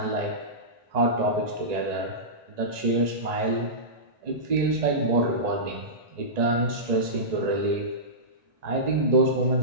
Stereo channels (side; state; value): left; late; 1.9 ms